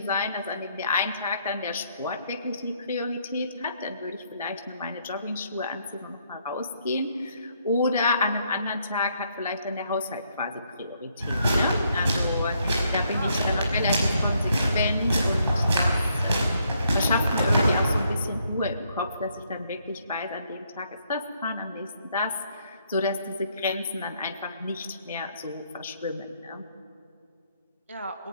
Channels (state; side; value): inverted; both; correlation -0.72